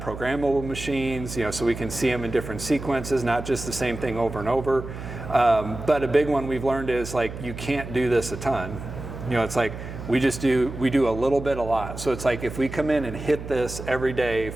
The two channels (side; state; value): right; noise; hum, 10 dB below the sound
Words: programmable machines, so we can see them in different sequences, not just the same thing over and over. But a big one we've learned is like you can't do this a ton. It's like we do a little bit a lot. So it's like if we come in and hit this every day